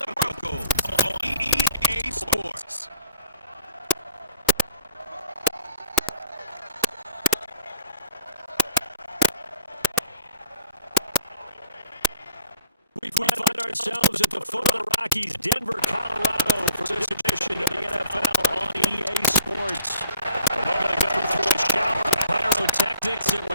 Broncos on EA Sports. We find ourselves at the foot of the Rockies, Denver, Colorado, for this edition of the NFL on EA Sports. A moment ago, through a shower of pyrotechnics, it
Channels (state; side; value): inverted; both; correlation -0.57